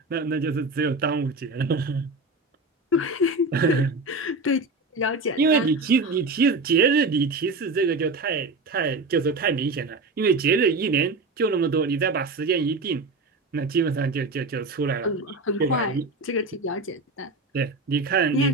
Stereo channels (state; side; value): quieter; left; 3.3 dB